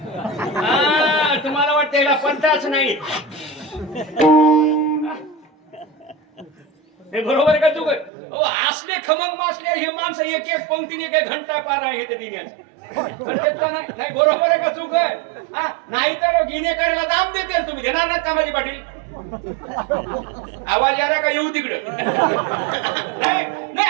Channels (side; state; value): left; drops out; at 8.1 s